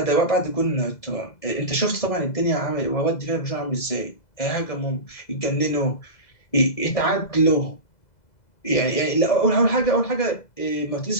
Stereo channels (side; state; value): right; late; 2.0 ms